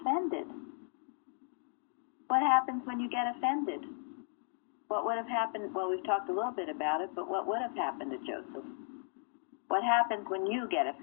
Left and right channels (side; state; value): right; silent; 54 dB below the other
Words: What happens when you get offended? What would have happened? Well, we've talked a little bit about it, but what would have happened to Joseph? What happens when you get